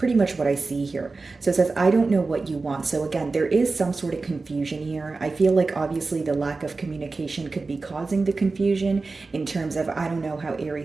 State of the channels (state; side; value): quieter; left; 3.8 dB